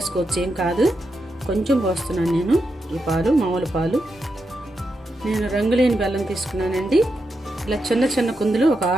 ఏం కాదు. కొంచెం పోస్తున్నాను నేను ఈ పాలు, మామూలు పాలు. నేను రంగులేని బెల్లం తీసుకున్నానండి. ఇలా చిన్న చిన్న కుందులు ఒక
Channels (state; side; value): normal; both; correlation 0.85